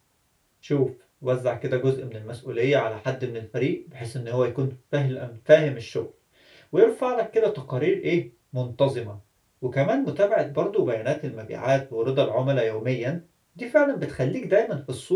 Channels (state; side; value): identical; both; correlation 1.00